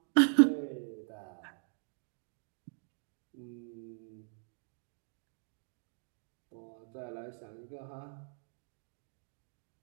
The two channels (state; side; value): silent; left; digital silence